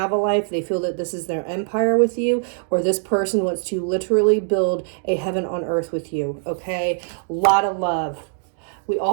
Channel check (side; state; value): left; silent; digital silence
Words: a life. They feel that this is their empire with you, or this person wants to literally build a heaven on earth with you. Okay. A lot of love. We